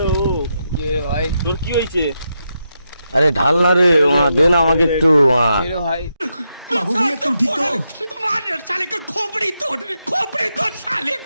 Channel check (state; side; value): inverted; both; correlation -0.84